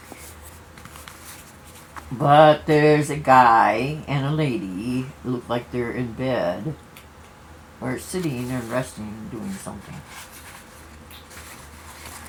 But there's a guy and a lady who look like they're in bed or sitting and resting and doing something.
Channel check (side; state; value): both; identical; correlation 1.00